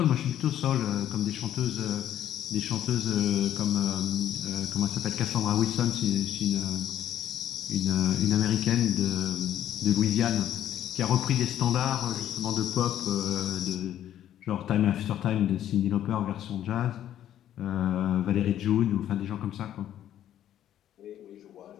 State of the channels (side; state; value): right; quieter; 11.4 dB